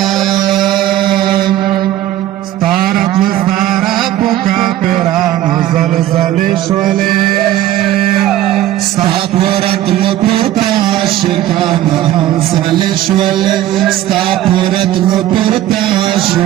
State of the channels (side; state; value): left; quieter; 13.5 dB